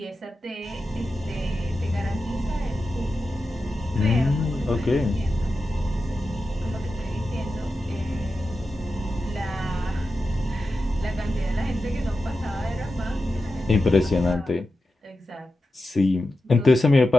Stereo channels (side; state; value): both; normal; correlation 0.91